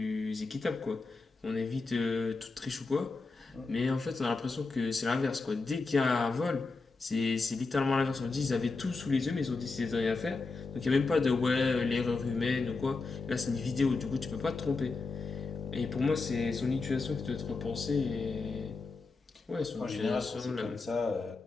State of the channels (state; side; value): quieter; right; 3.9 dB